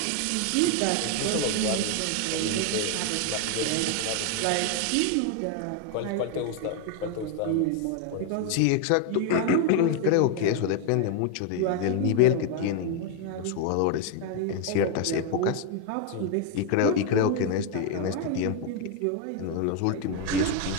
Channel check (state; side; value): different; both; correlation 0.01